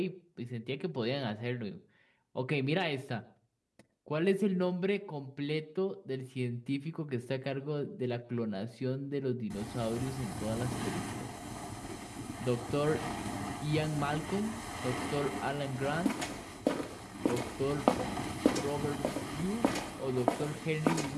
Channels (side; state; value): both; identical; correlation 1.00